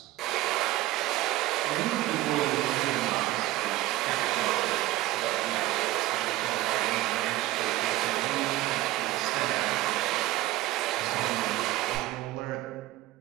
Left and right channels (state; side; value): quieter; left; 16.5 dB